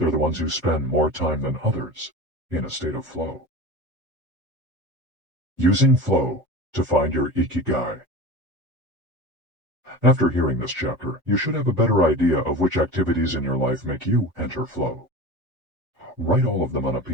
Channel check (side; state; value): both; normal; correlation 0.32